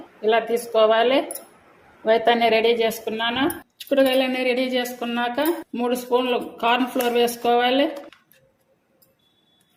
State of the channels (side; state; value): both; identical; correlation 1.00